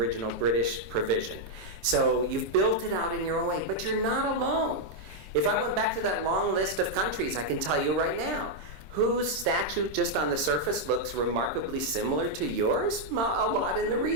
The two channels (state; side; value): late; left; 26 ms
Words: British provision. So you've built it out in your own way, but you're not alone. If I went back to that long list of countries, I can tell you right now, whose statute just on the surface looks remarkably similar to yours? A lot in the